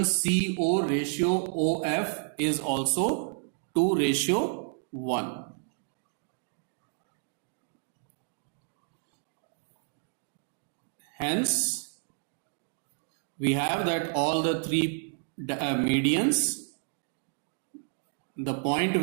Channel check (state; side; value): silent; left; digital silence